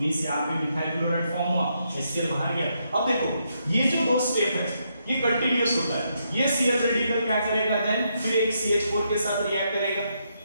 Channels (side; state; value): both; inverted; correlation -0.78